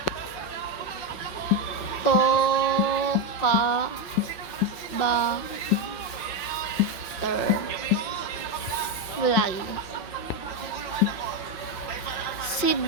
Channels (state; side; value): late; right; 5.6 ms